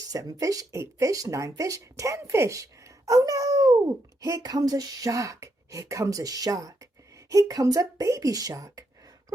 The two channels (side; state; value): both; normal; correlation 0.79